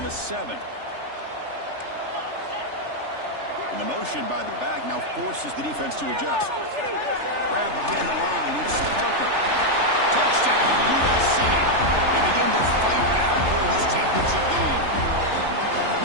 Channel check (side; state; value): left; late; 3.3 ms